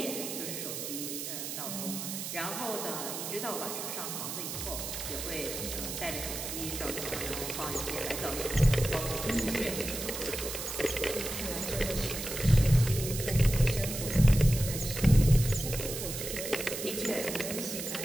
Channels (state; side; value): noise; right; hiss, 6 dB below the sound